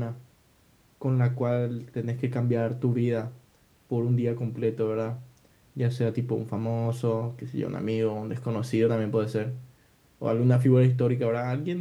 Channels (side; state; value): both; identical; correlation 1.00